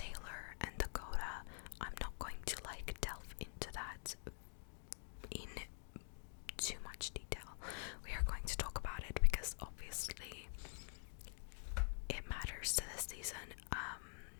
and Dakota. I'm not going to delve into that in too much detail. We are going to talk about it because obviously it matters to this season,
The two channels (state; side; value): silent; right; digital silence